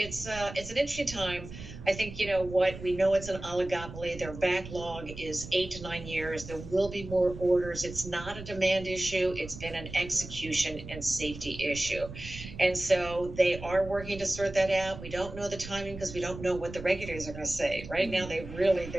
an interesting time. I think, what we know, it's an oligopoly. Their backlog is 8 to 9 years. There will be more orders. It's not a demand issue. It's been an execution and safety issue. And so they are working to sort that out. We don't know the timing because we don't know what the regulators are going to say. Right now, their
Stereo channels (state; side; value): noise; right; rumble, 12 dB below the sound